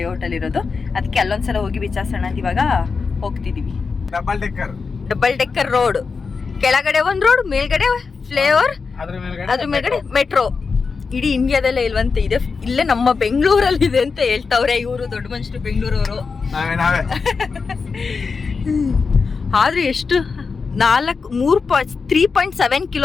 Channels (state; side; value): quieter; right; 4.9 dB